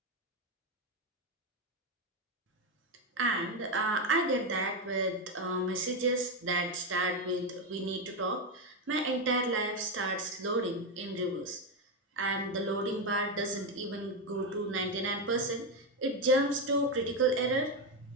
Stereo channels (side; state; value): both; normal; correlation 0.09